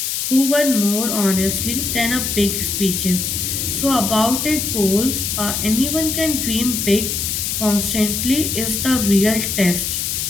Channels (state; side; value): noise; left; hiss, 1 dB below the sound